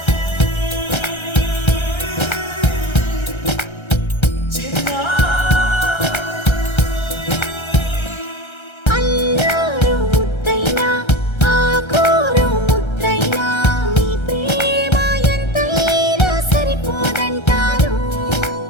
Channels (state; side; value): late; right; 1.3 ms